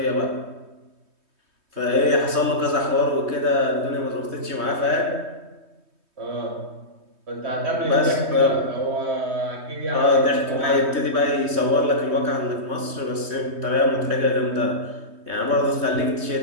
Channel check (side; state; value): left; late; 3.2 ms